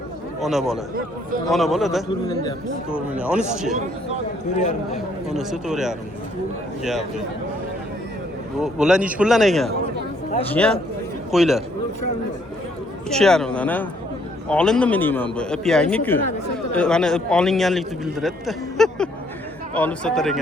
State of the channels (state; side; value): normal; both; correlation 0.67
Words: Ona bola. Ona bola-da 4 million deyapmiz. 4 million. Onisi-chi? 4.5. Onisi 4,5. Gap yo'q. Bular nech puldan ekan? Jiyan qo'ylar. 3,5 dan, ha? Olindimi deyman bu? Ip yangi-ku. Mana ip olinganlikni bildiradi-da. Olib sotar